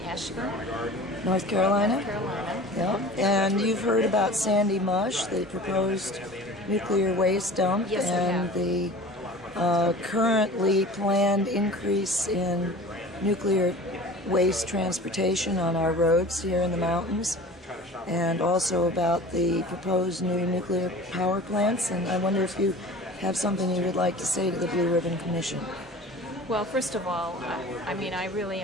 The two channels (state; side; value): normal; both; correlation 0.40